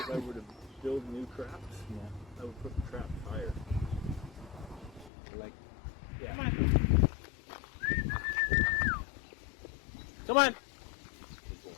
I were to build new traps? Yeah. I would put the trap higher. Like, Yeah. Come on. Come on. He's going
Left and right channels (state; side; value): drops out; right; at 5.1 s